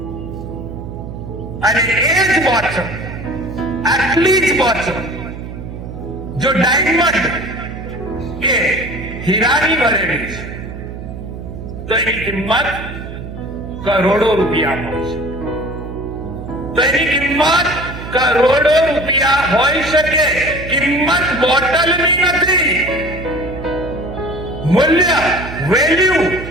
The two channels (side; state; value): right; noise; hum, 10 dB below the sound